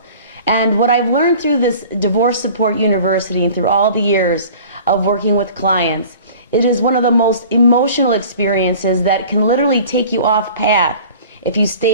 And what I've learned through this Divorce Support University and through all the years of working with clients, it is one of the most emotional experiences that can literally take you off path if you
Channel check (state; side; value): inverted; both; correlation -0.44